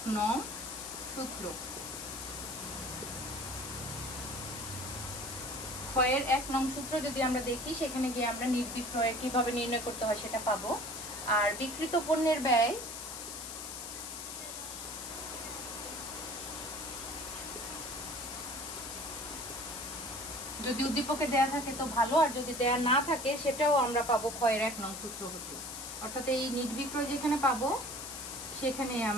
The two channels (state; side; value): noise; left; hiss, 8 dB below the sound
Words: নং সূত্র, ক্ষয়ের 1 নং সূত্র যদি আমরা দেখি, সেখানে গিয়ে আমরা নিট বিক্রয় কিভাবে নির্ণয় করতে হয় সেটা পাবো। আর বিক্রিত পণ্যের ব্যয় যদি উদ্দীপকে দেয়া থাকে তো ভালো, আর যদি দেয়া না থাকে সেটাও আমরা পাবো ক্ষয়ের 1 নং সূত্র হতে। অর্থাৎ এই নিট বিক্রয় যেখানে পাবো সেখানে